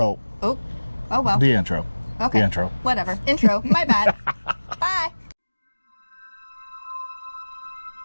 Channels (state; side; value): inverted; both; correlation -1.00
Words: Oh well. The intro. Okay. The intro. Whatever. Intro. My bad. Bye.